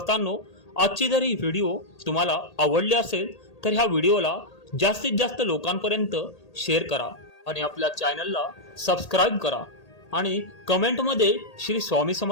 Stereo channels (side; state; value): right; late; 1.8 ms